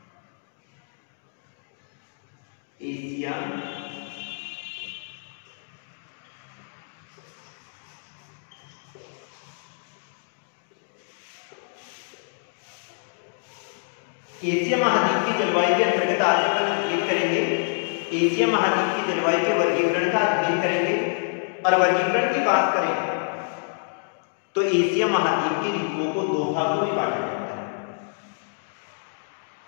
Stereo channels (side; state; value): right; silent; digital silence